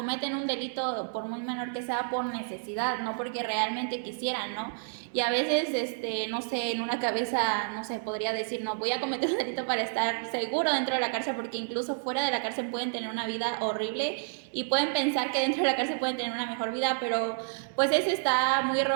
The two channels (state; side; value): silent; left; digital silence